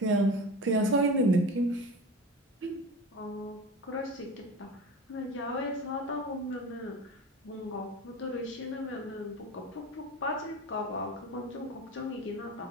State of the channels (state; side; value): normal; both; correlation 0.32